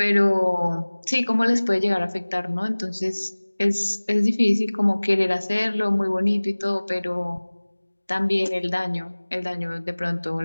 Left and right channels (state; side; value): inverted; both; correlation -1.00